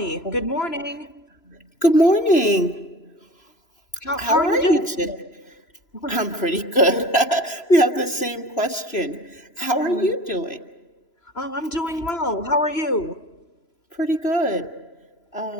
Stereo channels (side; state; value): right; late; 3.0 ms